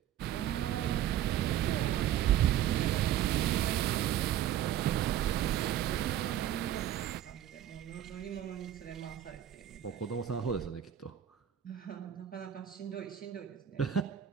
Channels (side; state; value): left; quieter; 11.2 dB